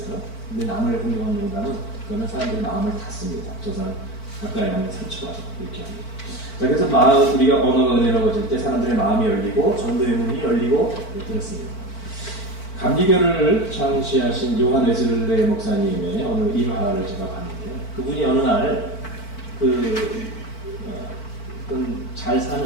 근데 남을 공격하는 농담은 그거는 사람들이 마음을 닫습니다. 저 사람 가까이 하면 상처가 이렇게 합니다. 자, 그래서 우리가 언어가 은혜로워질 때 사람들의 마음이 열리고 전도의 문이 열리고 그렇습니다. 감리교를 창시하신 요한 웨슬레 목사님의 어느 일화를 제가 봤는데요. 그분이 어느 날 어떤 잘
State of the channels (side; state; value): right; late; 4.5 ms